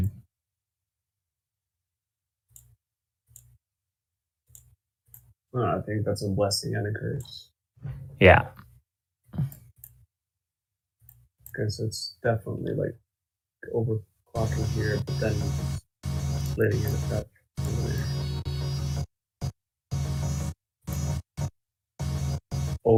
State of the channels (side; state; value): both; identical; correlation 1.00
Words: Oh, I think that's a blessing and a curse. Yeah. Because it's definitely like overclocking here, but then letting it affect.